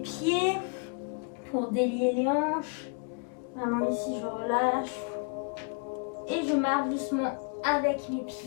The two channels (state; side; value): quieter; right; 38.2 dB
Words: Pour délier les hanches. Vraiment ici, je relâche. Et je marche doucement avec mes